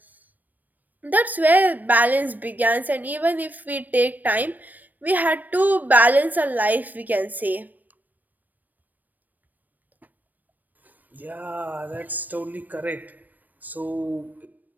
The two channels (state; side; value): late; left; 0.086 ms